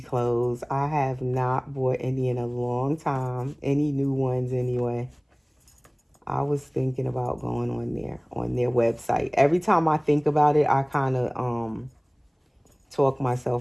clothes. I have not bought any in a long time, any new ones anyway. I was thinking about going on their website. Every time I think about it, I kind of talk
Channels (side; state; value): both; identical; correlation 1.00